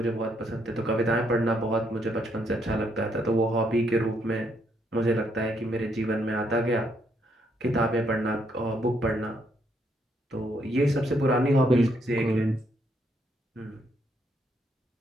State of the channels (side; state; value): both; normal; correlation 0.74